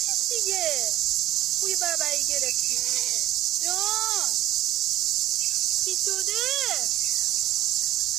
دیگه. بوی بربری گرفتی جان. چی شده؟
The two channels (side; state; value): left; quieter; 14.7 dB